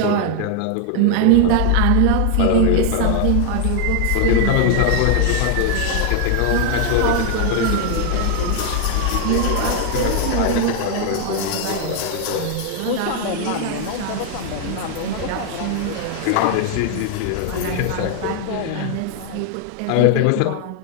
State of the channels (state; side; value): different; both; correlation 0.00